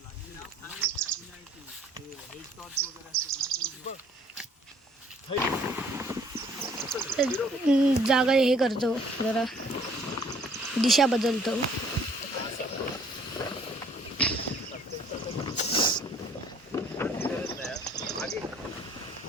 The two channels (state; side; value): normal; both; correlation 0.58